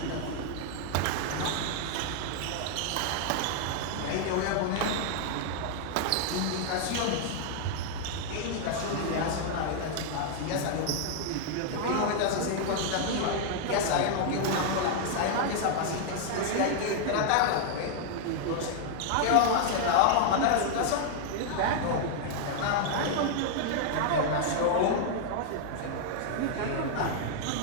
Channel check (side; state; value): both; different; correlation 0.00